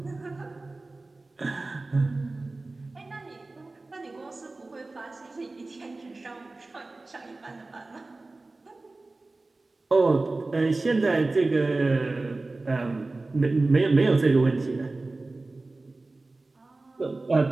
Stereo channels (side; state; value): left; quieter; 3.2 dB